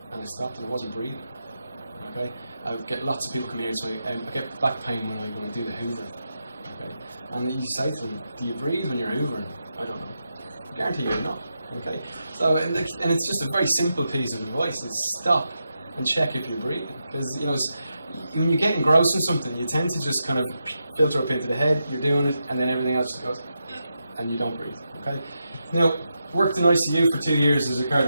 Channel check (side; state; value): both; inverted; correlation -0.86